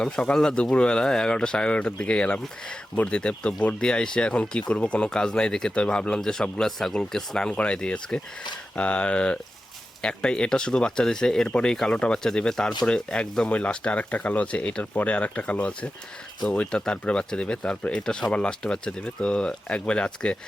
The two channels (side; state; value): both; normal; correlation 0.92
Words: সকাল না, দুপুরবেলা 11টা সাড়ে 11টার দিকে গেলাম ভোট দিতে। তো ভোট দিয়ে এসে এখন কি করব, কোনো কাজ নাই দেখে তো ভাবলাম যে সবগুলা ছাগলকে স্নান করাই দিই আজকে। আর একটাই, এটা শুধু বাচ্চা দিছে, এরপরে এই কালোটা বাচ্চা দিবে, তারপরে একদম ওই লাস্টে আরেকটা কালো আছে, এটার পরে আরেকটা কালো আছে, তো ওইটা তারপরে বাচ্চা দিবে, তারপরে এটা সবার লাস্টে বাচ্চা দিবে। তো একবারে আজকে